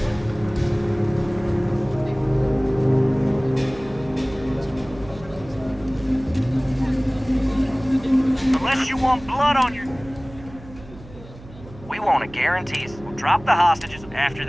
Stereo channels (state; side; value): noise; right; hum, 19 dB below the sound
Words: Unless you want blood on your... We want to guarantee us. We'll drop the hostages. After